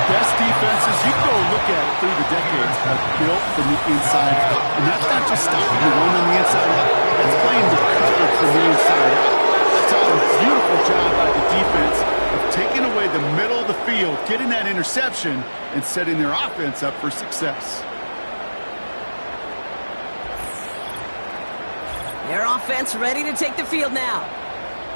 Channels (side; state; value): both; inverted; correlation -1.00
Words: best defenses, you can go look at it through the decades, have built from the inside out. And that's not just stopping the run on the inside out. That's playing the cover from the inside out. That's a beautiful job by the defense of taking away the middle of the field, getting that interception, and setting their offense up for success. Their offense ready to take the field now.